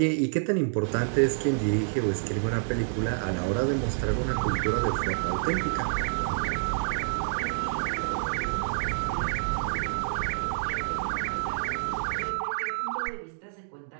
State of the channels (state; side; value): silent; left; digital silence